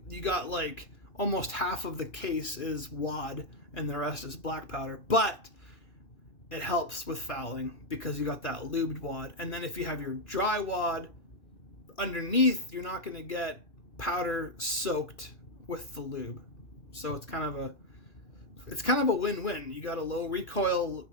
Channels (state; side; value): late; right; 2.6 ms